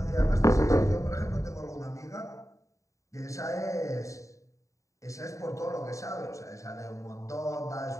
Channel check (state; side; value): late; right; 0.16 ms